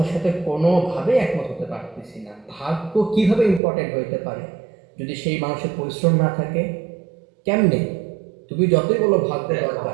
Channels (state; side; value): drops out; left; at 3.6 s